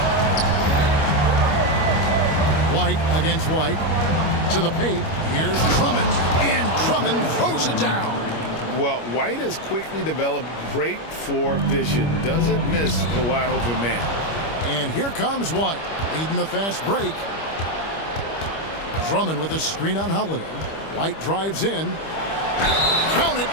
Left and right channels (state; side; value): late; right; 25 ms